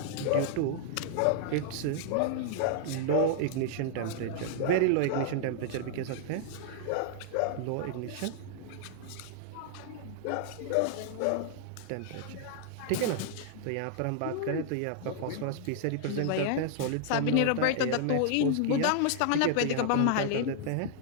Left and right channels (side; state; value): both; different; correlation -0.01